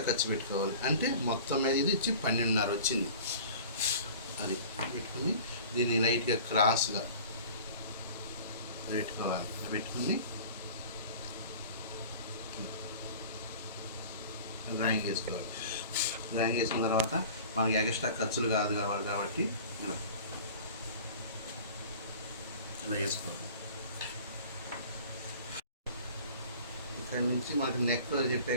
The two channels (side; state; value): both; inverted; correlation -0.43